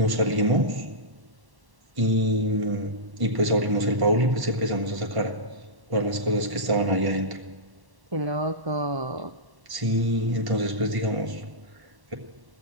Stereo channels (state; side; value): late; left; 1.1 ms